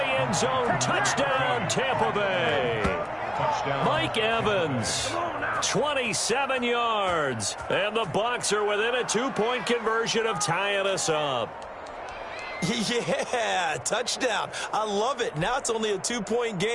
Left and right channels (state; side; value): identical; both; correlation 1.00